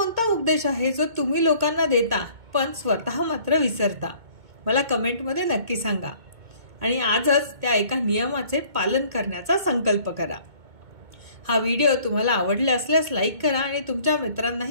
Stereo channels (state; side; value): late; left; 2.2 ms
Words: उपदेश आहे जो तुम्ही लोकांना देता पण स्वतः मात्र विसरता? मला कमेंटमध्ये नक्की सांगा आणि आजच त्या एका नियमाचे पालन करण्याचा संकल्प करा। हा व्हिडिओ तुम्हाला आवडला असल्यास लाईक करा आणि तुमच्या